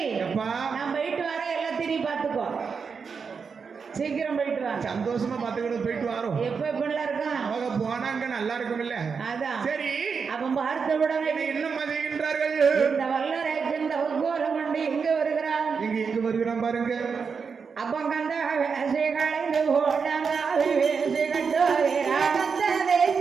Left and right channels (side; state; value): left; quieter; 5.7 dB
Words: நான் போயிட்டு வர எல்லாத்தையும் நீ பாத்துக்கோ. சீக்கிரம் போயிட்டு வா. சந்தோஷமா பாத்துக்கிட்டு போயிட்டு வரோம். எப்படிலாம் இருக்கா? அவங்க போனாங்க நல்லா இருக்கும் இல்ல? அதான் சரி. அப்ப பார்த்த உடனே என்ன செய்கின்றார்கள்? இந்த வல்லரைக்கு இந்த உத்கோலம் கொண்டு எங்க வருகிறான்? எங்க வருகிறான் பாருங்க. அப்ப கந்த வேசி கலைந்து போட்டாங்க வேசி கட்டுகிறான். கந்த